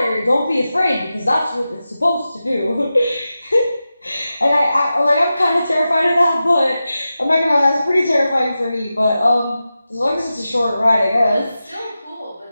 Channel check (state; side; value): inverted; both; correlation -0.93